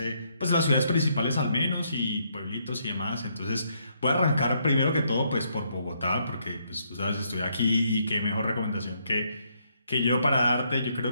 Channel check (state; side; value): inverted; both; correlation -0.73